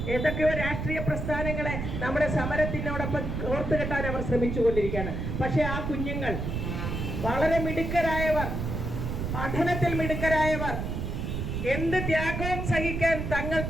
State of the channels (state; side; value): noise; right; rumble, 3 dB below the sound